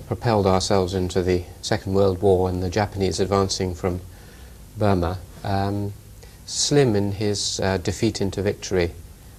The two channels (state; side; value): identical; both; correlation 1.00